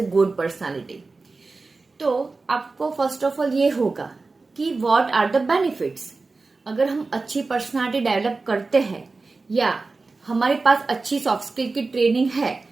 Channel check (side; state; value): left; quieter; 3.8 dB